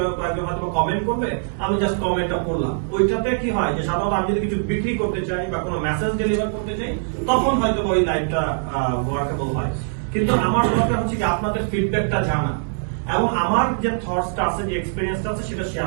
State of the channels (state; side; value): silent; left; digital silence